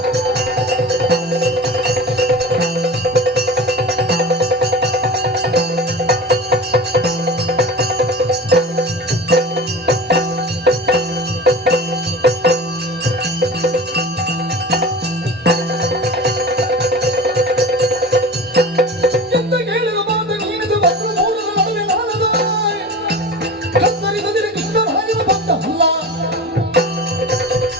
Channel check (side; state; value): both; normal; correlation 0.33